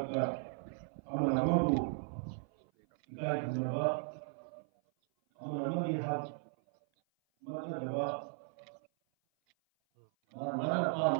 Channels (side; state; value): left; silent; 53 dB below the other